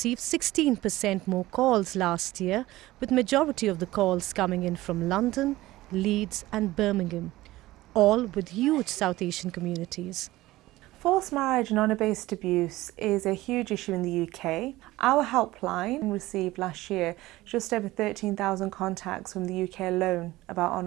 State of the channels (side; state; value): left; quieter; 17.6 dB